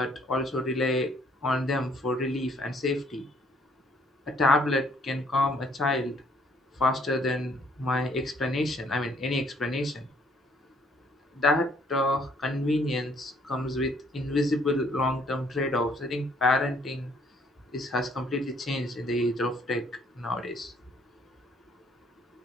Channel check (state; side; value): normal; both; correlation 0.63